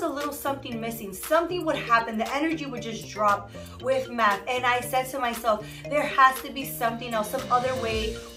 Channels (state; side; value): identical; both; correlation 1.00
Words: a little something missing. Something would happen. The energy would just drop with math. And I said to myself, there has to be something else, some other way